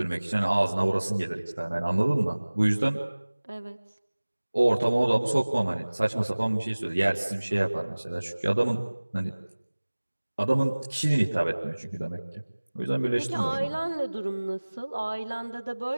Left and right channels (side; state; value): both; inverted; correlation -1.00